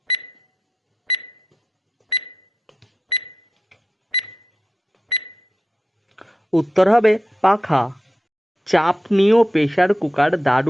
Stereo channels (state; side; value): normal; both; correlation 0.88